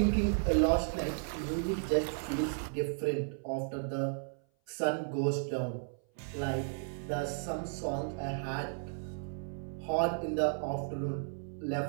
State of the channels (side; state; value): left; silent; 55 dB below the other